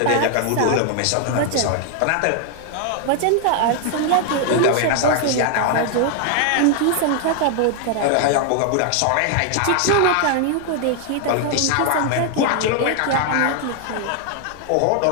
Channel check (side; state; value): both; different; correlation 0.00